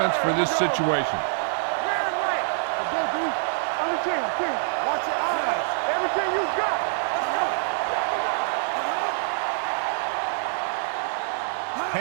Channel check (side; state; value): left; silent; 61 dB below the other